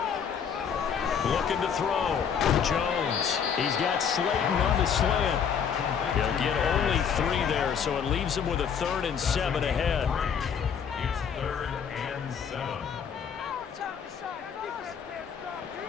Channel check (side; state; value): right; quieter; 7.3 dB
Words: Looking to throw. Jones. He's got Slayton on the slant. He'll get only 3 there, so it leaves him with a 3rd and 7 ahead. It's 3rd and 7.